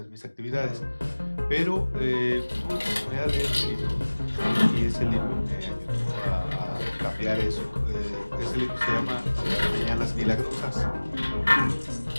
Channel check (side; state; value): both; inverted; correlation -1.00